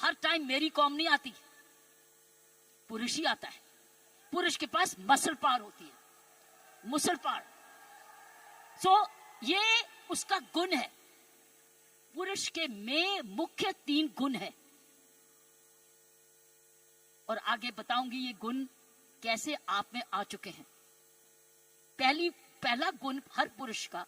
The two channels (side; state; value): both; identical; correlation 1.00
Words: टाइम मेरी कॉम नहीं आती, पुरुष ही आता है। पुरुष के पास मसल पावर होती है, मसल पावर। सो ये उसका गुण है। पुरुष के में मुख्य 3 गुण है, और आगे बताऊंगी ये गुण कैसे आप में आ चुके हैं। पहला गुण हर पुरुष का,